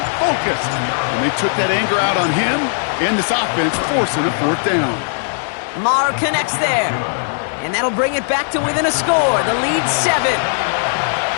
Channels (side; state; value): right; silent; digital silence